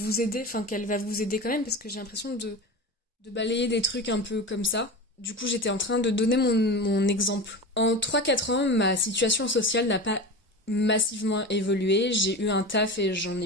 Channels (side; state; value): both; normal; correlation 0.28